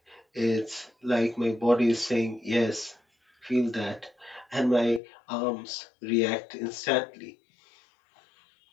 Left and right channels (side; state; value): right; drops out; at 5.0 s